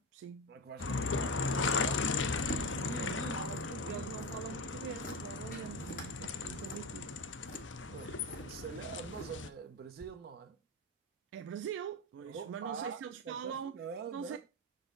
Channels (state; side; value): normal; both; correlation 0.21